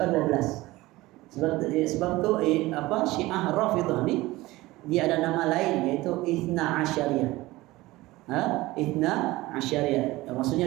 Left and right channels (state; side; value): quieter; left; 19.1 dB